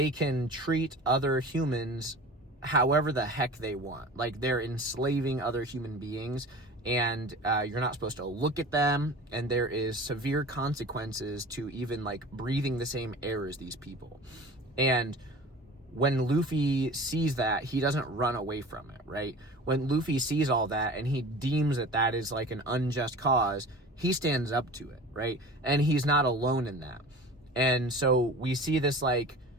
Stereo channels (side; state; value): both; normal; correlation 0.39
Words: can treat other humans however the heck they want. Like, they're enslaving other human beings, and you're not supposed to look at them, and there is severe consequences to even like breathing the same air as these people. And when Luffy sees that, he doesn't run away from it, right? When Luffy sees all that and he deems that that is like an unjust cause, he stands up to it, right? And he's not alone in that. And so we see this like